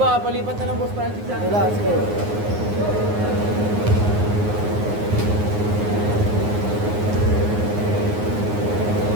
palipat na lang Boss Francis. Wala, sige.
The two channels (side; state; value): left; late; 9.6 ms